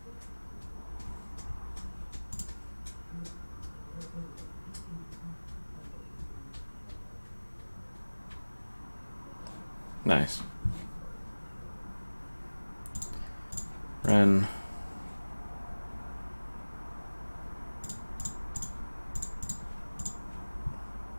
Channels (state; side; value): inverted; both; correlation -1.00